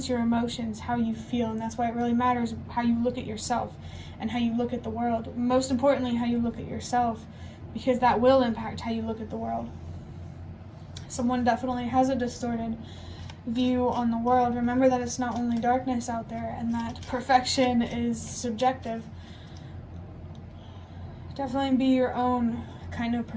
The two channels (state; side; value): identical; both; correlation 1.00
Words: your emotions, how you feel, and that's why it really matters how you look at yourself and how you look at the world. Most importantly, how you look at yourself, because that will impact how you look at the world. Someone definitely has a distorted view on the world. Remember that it's not only darkness out there, and that perfection is subjective. Definitely be your own kind of